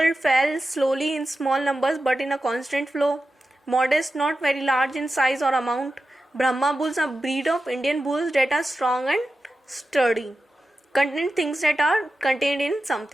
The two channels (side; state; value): both; normal; correlation 0.92